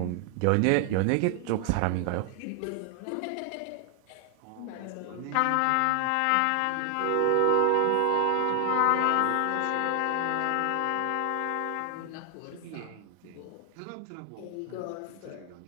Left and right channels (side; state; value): both; different; correlation 0.00